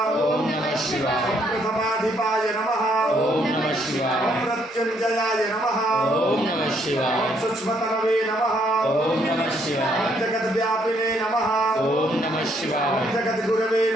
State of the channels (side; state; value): both; normal; correlation 0.70